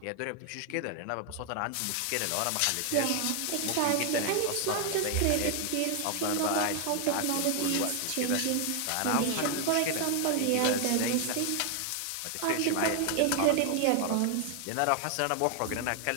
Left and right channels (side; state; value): both; different; correlation 0.00